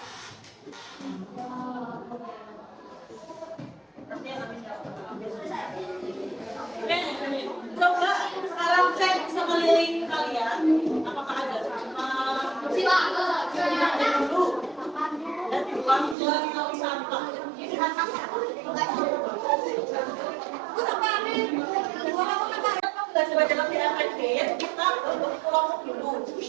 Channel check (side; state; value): left; drops out; at 16.2 s